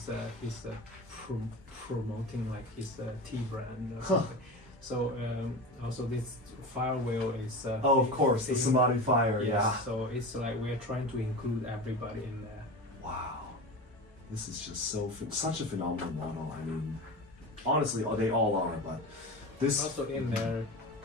promoting like his tea brand or something. So also this fire wheel is of course, the Samadhi fire. Yes, yeah. So it's like we are trying to include everybody in there. Wow, this is just such a phenomenal model. I mean, honestly, they all are, but this also in there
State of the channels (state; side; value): normal; both; correlation 0.28